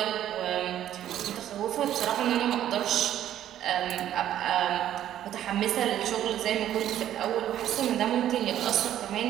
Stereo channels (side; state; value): left; quieter; 11.6 dB